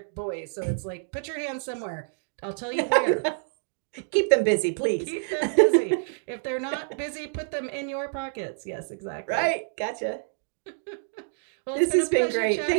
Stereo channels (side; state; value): left; silent; digital silence